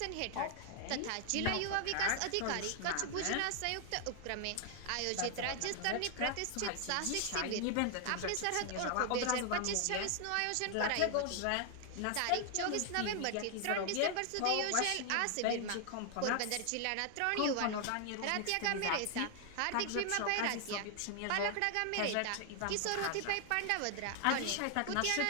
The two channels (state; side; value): different; both; correlation 0.00